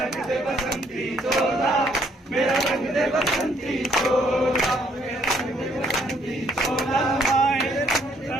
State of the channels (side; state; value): both; normal; correlation 0.67